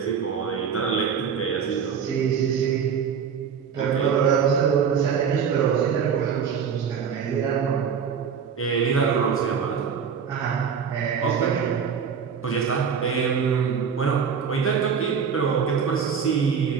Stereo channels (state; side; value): quieter; left; 6.8 dB